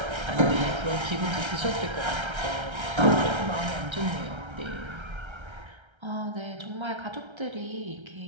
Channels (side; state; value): left; late; 1.3 ms